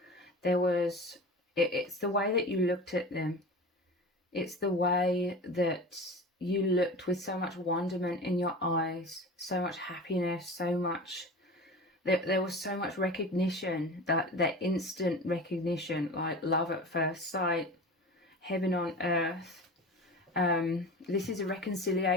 there was, it's the way that you looked at them. It's the way that you looked with so much wonderment in your eyes, so much happiness, so much, there was so much recognition, that instant recognition, like love at first sight, heaven on earth. This is a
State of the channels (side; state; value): both; normal; correlation 0.34